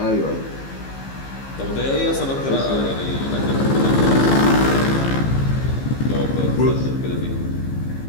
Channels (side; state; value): right; late; 15 ms